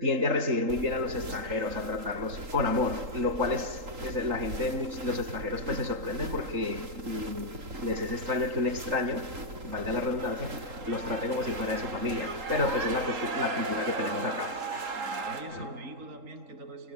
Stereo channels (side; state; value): left; late; 3.8 ms